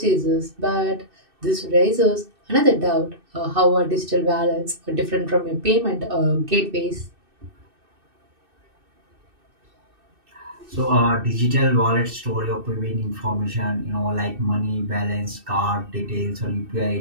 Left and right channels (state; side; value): late; left; 2.6 ms